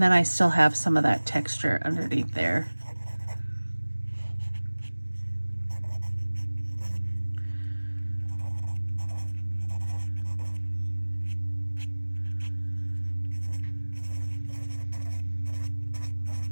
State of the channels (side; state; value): both; inverted; correlation -1.00